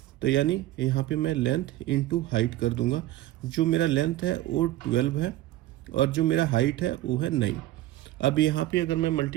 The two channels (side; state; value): left; quieter; 15.4 dB